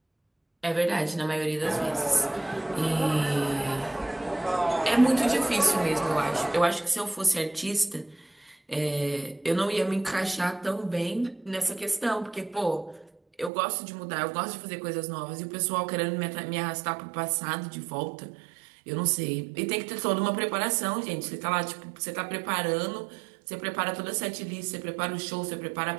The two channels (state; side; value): drops out; left; at 13.5 s